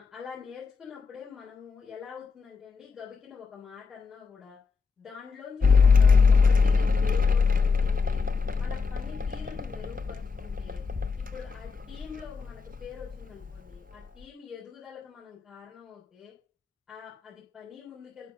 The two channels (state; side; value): quieter; right; 4.9 dB